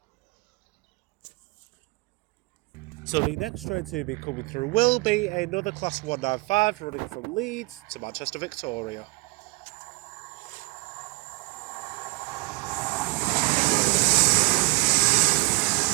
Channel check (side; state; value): left; quieter; 27.2 dB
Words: So the next train to be coming through will be another Class 195 running from Leeds to Manchester Victoria.